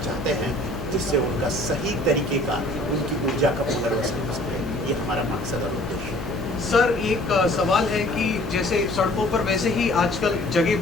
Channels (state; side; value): noise; left; hum, 9 dB below the sound